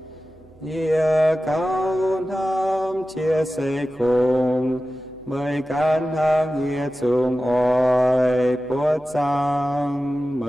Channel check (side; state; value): right; noise; hum, 28 dB below the sound